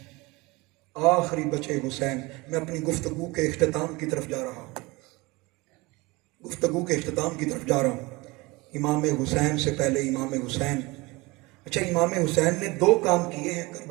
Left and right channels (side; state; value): left; quieter; 23.5 dB